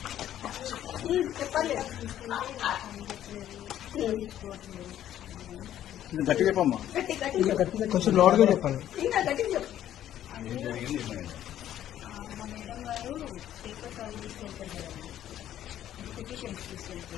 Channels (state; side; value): quieter; right; 11.7 dB